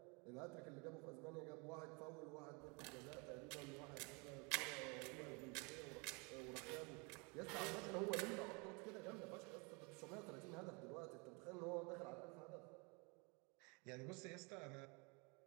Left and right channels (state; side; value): quieter; left; 31.0 dB